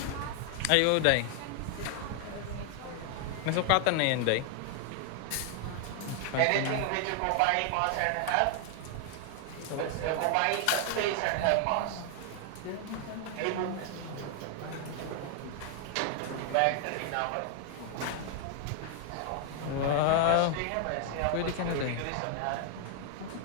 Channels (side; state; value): both; different; correlation 0.00